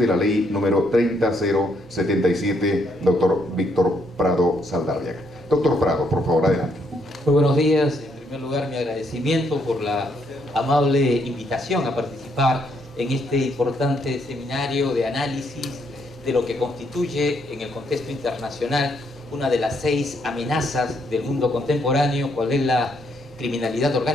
la ley número 30077, doctor Víctor Prado Saldarriaga. Doctor Prado, por favor, adelante. Muy buenos días. En primer lugar, mi agradecimiento por la amable invitación a participar en este importante seminario de análisis de lo que constituye en el contexto internacional una de las 6 amenazas del mundo contemporáneo, cual es la criminalidad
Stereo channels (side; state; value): both; normal; correlation 0.73